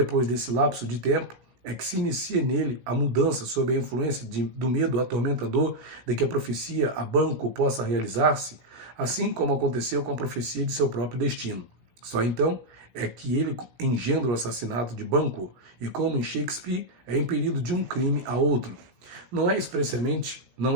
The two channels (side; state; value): left; late; 17 ms